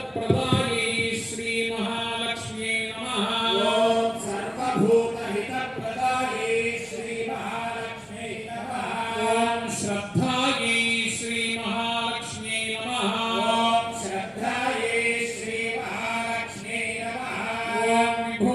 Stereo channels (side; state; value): both; identical; correlation 1.00